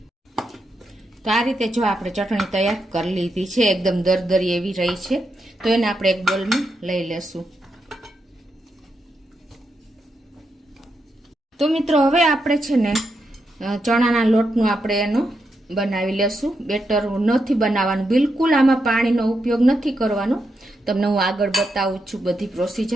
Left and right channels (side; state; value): both; normal; correlation 0.84